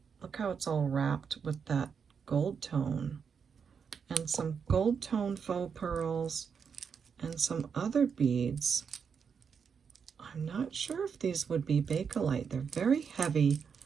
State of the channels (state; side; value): quieter; left; 6.5 dB